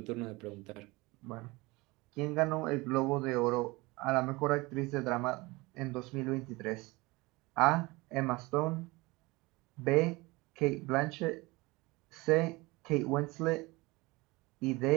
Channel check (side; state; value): left; quieter; 23.1 dB